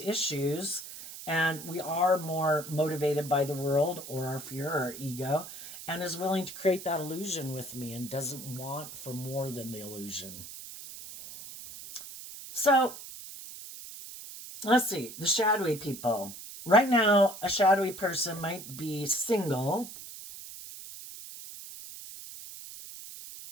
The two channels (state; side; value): noise; right; hiss, 12 dB below the sound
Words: and we are more motivated by the world or our fear or our ego, and is willing to create that illusion with me and doesn't want for more than the illusion. So let's see, the shadowy people. Right now, a shadowy person might be single.